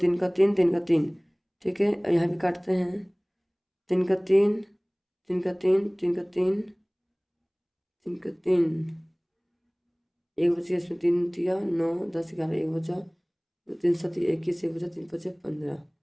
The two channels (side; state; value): both; identical; correlation 1.00